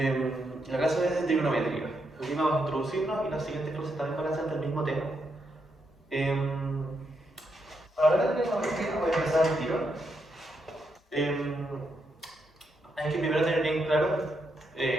La clase es de trigonometría. Hoy día vamos a introducirnos y las siguientes clases también van a ser del mismo tema. Para hablar de trigonometría voy a empezar el tiro. Hay que primero tener bien claro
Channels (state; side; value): normal; both; correlation 0.80